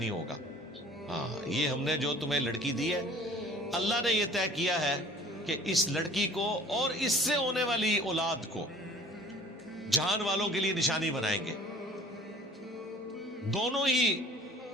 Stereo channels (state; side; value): normal; both; correlation 0.49